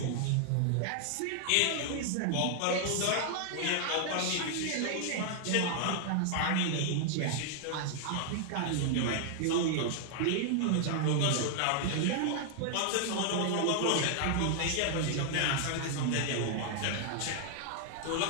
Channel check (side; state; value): both; different; correlation 0.00